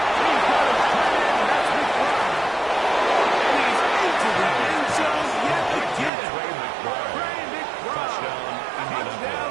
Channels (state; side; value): drops out; left; at 6.1 s